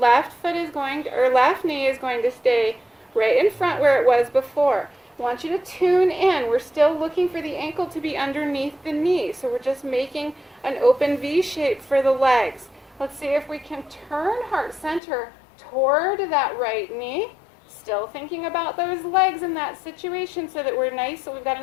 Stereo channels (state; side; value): drops out; right; at 15.0 s